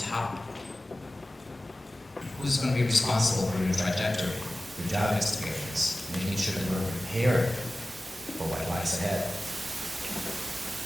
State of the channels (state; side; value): normal; both; correlation 0.96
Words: Who's going to be responsible for your trajectory, your job experience, making sure that we're prepared for what lies ahead?